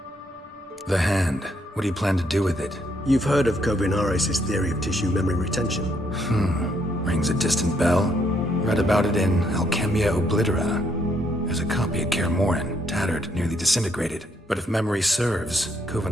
The hand. What do you plan to do with it? You've heard of Kovinaris' theory of tissue memory retention. Rings a distant bell. Read about it in Alchemia Oblitera. There's a copy at Kaer Morhen, tattered, nearly disintegrated. But if memory serves,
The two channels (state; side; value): normal; both; correlation 0.72